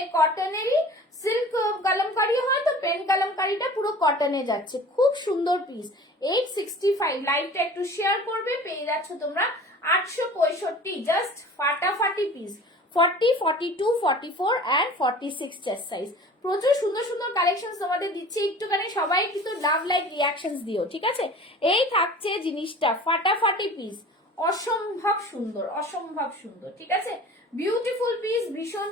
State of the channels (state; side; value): normal; both; correlation 0.42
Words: কটনেরই সিল্ক কালামকারি হয় তো পেন কালামকারিটা পুরো কটনে যাচ্ছে, খুব সুন্দর পিস। 865, লাইভটা একটু শেয়ার করবে, পেয়ে যাচ্ছ তোমরা 865, জাস্ট ফাটাফাটি পিস। 40, 42, 44 and 46 chest size. প্রচুর সুন্দর সুন্দর কালেকশন তোমাদের দিচ্ছি, একটুখানি সবাই কিন্তু লাভ লাইক রিয়াকশনস দিও, ঠিক আছে। এই থাকছে জিনিসটা ফাটাফাটি পিস, অসম্ভব সুন্দর, অসম্ভব সুন্দর, ঠিক আছে। বিউটিফুল পিস, ভীষণ